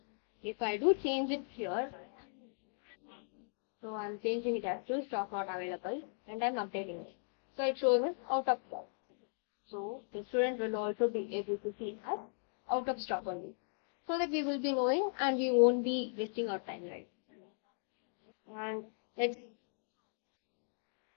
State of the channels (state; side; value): silent; right; digital silence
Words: If I do change it here, so I'm changing it as to stock not available and I'm updating it. So it shows us out of stock. So the student will also be able to see as out of stock only. So that we will be knowing and we won't be wasting our time, right? And let's